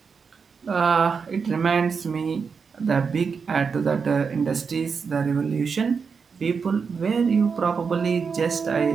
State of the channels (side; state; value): left; quieter; 5.6 dB